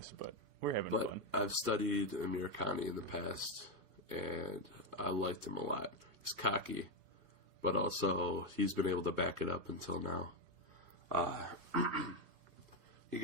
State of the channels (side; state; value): left; late; 2.5 ms